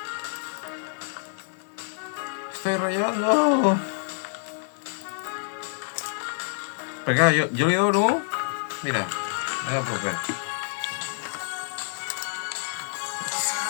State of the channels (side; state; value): right; silent; digital silence